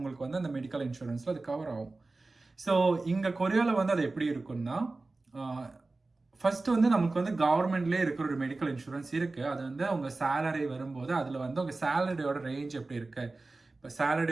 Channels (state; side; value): quieter; left; 3.4 dB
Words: வந்து அந்த மெடிக்கல் இன்சூரன்ஸில் அது கவர் ஆகும். ஸோ இங்கே கொரியாவில் வந்து அது எப்படி இருக்குன்னா, ஃபர்ஸ்ட் வந்து நமக்கு வந்து கவர்மெண்ட்லேயே இருக்கிற ஒரு மெடிக்கல் இன்சூரன்ஸ் இருக்குது. அது வந்து அவங்க சேலரி வரும்போது அதில் வந்து உங்கள் சேலரியோட ரேஞ்ச் எப்படி இருக்குது, இப்போ